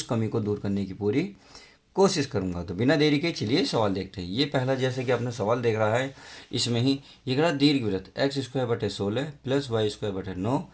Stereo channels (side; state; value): both; identical; correlation 1.00